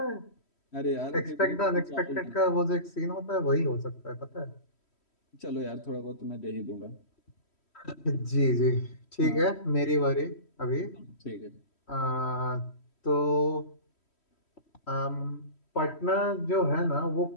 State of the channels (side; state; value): right; late; 3.1 ms